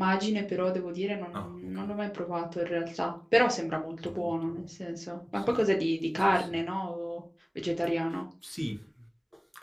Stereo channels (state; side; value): identical; both; correlation 1.00